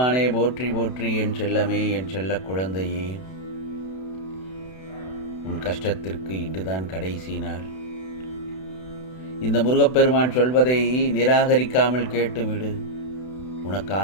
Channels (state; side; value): late; right; 32 ms